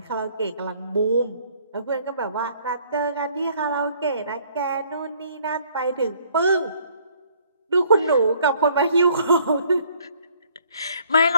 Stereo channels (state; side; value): inverted; both; correlation -0.62